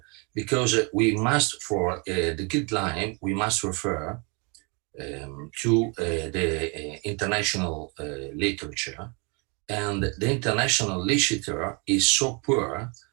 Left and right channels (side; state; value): left; quieter; 32.3 dB